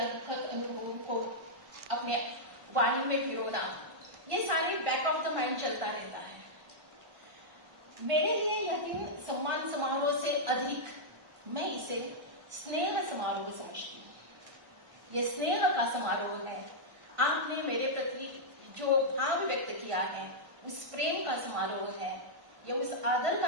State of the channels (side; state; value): left; late; 1.1 ms